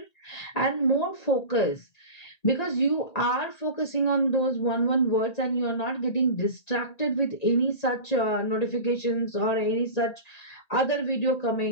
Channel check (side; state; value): right; late; 1.9 ms